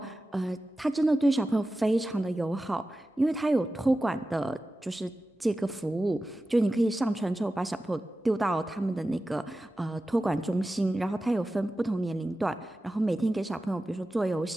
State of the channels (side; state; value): both; normal; correlation 0.94